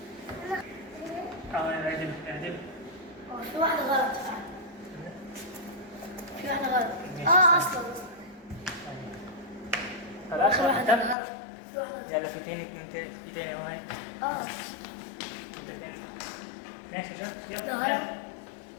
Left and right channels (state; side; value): drops out; right; at 11.2 s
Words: اعدل اعدل. في واحدة غلط فعلا. في واحدة غلط. اصلا خلاص اخر واحدة واحدة. غلط. في واحدة يلا في تاني في تاني اهو هاي. اه انت تاني. ماشي شاطر يلا. غلط.